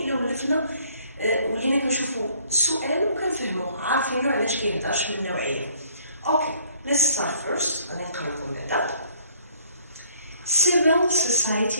ولفنا ولينا كنشوفوا السؤال وكنفهموه، عارفينو علاش كيهضرش من النوعيه. اوكي، let's start first. غادي نقرا لكم بعدا. Civil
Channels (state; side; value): inverted; both; correlation -0.61